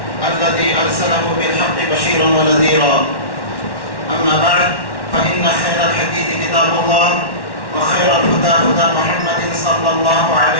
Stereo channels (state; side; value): late; right; 1.1 ms